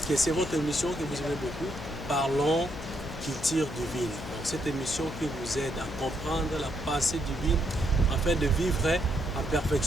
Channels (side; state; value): left; noise; hum, 10 dB below the sound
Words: c'est votre émission que vous aimez beaucoup, Parlons culture divine. Donc, cette émission qui vous aide à comprendre la pensée divine afin de vivre en